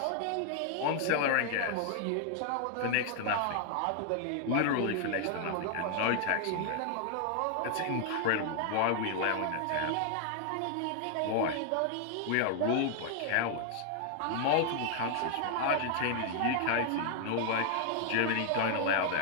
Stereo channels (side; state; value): both; different; correlation 0.00